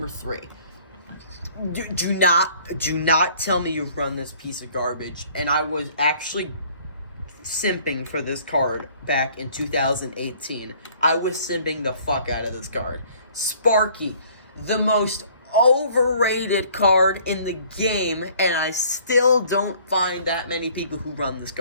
3. Do not tell me you've run this piece of garbage. And I was actually simping for this card back in 2018. I was simping the fuck out of this card. Sparky, the most overrated card in the game, and I still don't find that many people who run this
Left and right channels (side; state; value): both; inverted; correlation -0.56